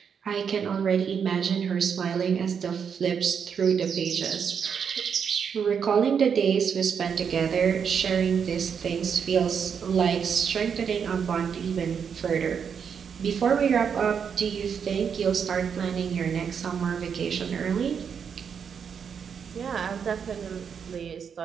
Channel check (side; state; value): left; quieter; 7.0 dB